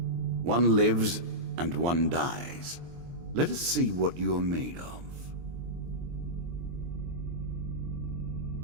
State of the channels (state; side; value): late; left; 23 ms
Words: One lives and one dies. Let us see what you are made of.